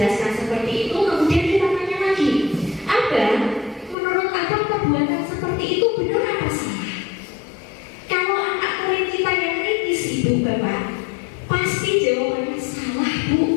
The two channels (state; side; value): drops out; right; at 4.0 s